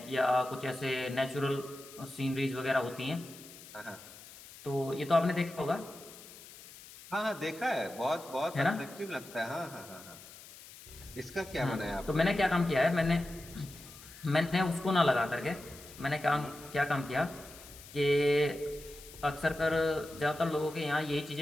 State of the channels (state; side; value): noise; left; hiss, 18 dB below the sound